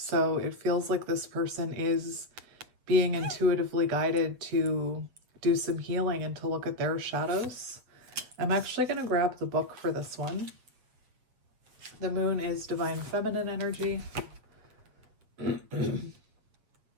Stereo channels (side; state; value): left; late; 8.0 ms